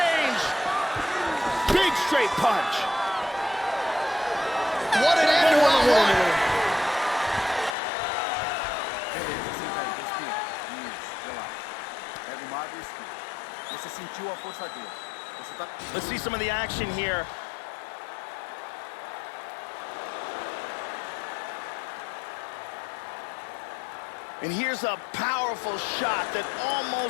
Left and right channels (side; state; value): right; drops out; at 7.8 s